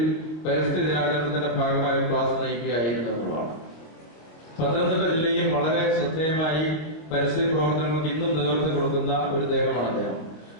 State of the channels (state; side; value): late; right; 25 ms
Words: പരിസ്ഥിതി ദിനാചരണത്തിന്റെ ഭാഗമായി ക്ലാസ് നയിക്കുകയായിരുന്നു എന്നുള്ളതാണ്. പത്തനംതിട്ട ജില്ലയിൽ വളരെ ശ്രദ്ധേയമായി പരിസ്ഥിതി പ്രവർത്തനങ്ങൾക്ക് ഇന്നും നേതൃത്വം കൊടുക്കുന്ന ഒരു ദേഹമാണ് അദ്ദേഹം.